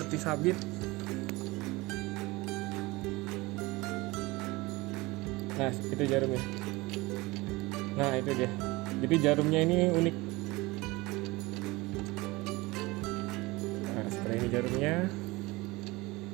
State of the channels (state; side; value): quieter; left; 22.3 dB